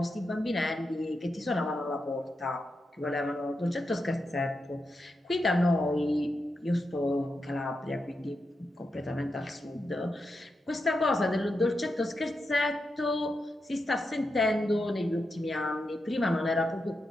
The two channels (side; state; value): both; normal; correlation 0.87